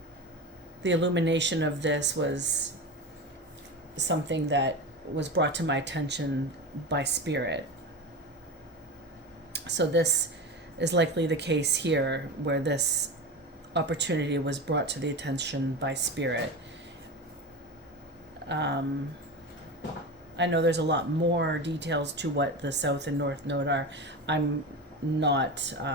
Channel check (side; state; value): both; normal; correlation 0.24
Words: the illumination of this was something that was brought to my attention by spirit. So this is likely the case here, where this opportunity was brought to the attention by spirit. I I know there's a lot more details to what the South and North Node are. I'm not